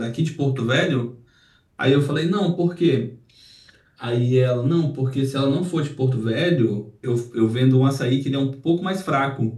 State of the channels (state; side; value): identical; both; correlation 1.00